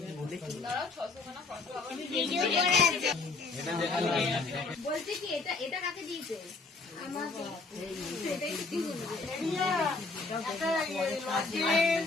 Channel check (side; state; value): right; quieter; 3.9 dB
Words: দাঁড়াও 600 খানা ফটো আবার ভিডিও করে আছে। এটা দেখালে বলছি কি এটা এটা কাকে দিয়েছে আমাকে